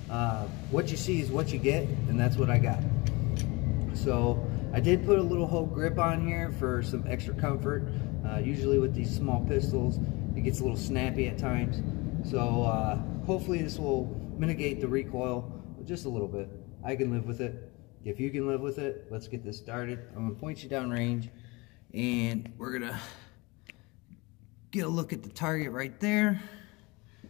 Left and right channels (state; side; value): quieter; right; 25.3 dB